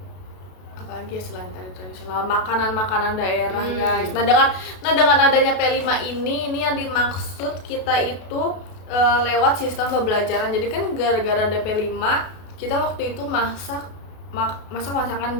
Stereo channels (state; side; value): late; right; 32 ms